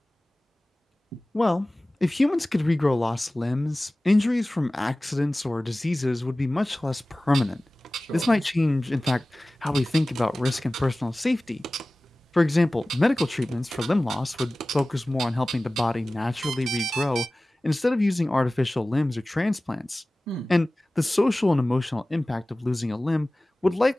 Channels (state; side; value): normal; both; correlation 0.98